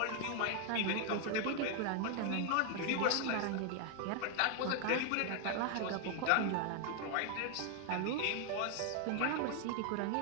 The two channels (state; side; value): different; both; correlation 0.01